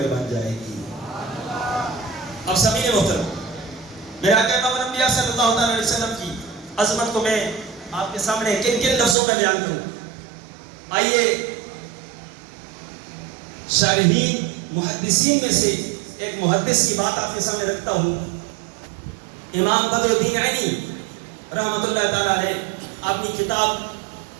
بن جائے گی۔ اب سامعین محترم، میرے آقا امام الانبیاء صلی اللہ علیہ وسلم کی عظمت کو میں آپ کے سامنے کن کن لفظوں میں بیان کروں؟ آئیے شارحین محدثین میں سے ایک محدث کی بات آپ کے سامنے رکھتا ہوں۔ امام بدر الدین عینی رحمۃ اللہ تعالیٰ علیہ اپنی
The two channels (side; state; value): left; drops out; at 9.2 s